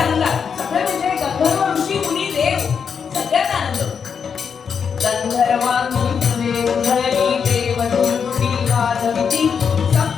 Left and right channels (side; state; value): right; quieter; 6.6 dB